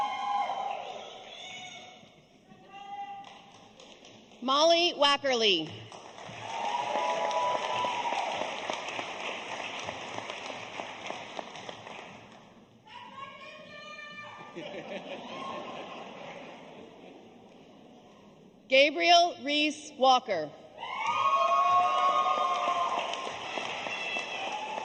Molly Wackerly. Gabriel Reese Walker.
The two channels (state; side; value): identical; both; correlation 1.00